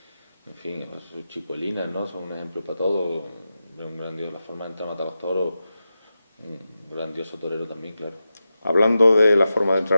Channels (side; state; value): both; inverted; correlation -0.91